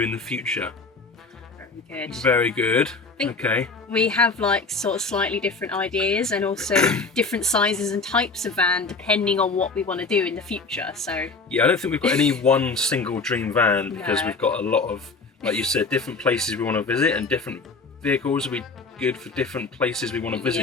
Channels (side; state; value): right; quieter; 4.0 dB